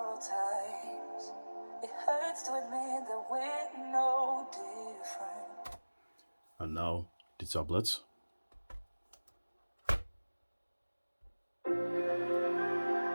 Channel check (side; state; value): both; inverted; correlation -1.00